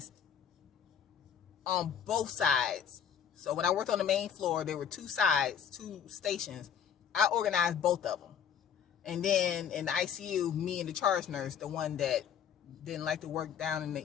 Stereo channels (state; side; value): quieter; right; 8.3 dB